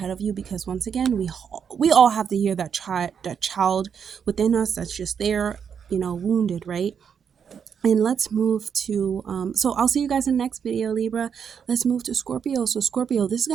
of you, because once again, we all have to hear that child within us that's just there, you know, wounded, right? And let's move to, so I'll see you guys in the next video, Libra. Let's move to Scorpio. So Scorpio, this is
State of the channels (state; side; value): quieter; left; 7.3 dB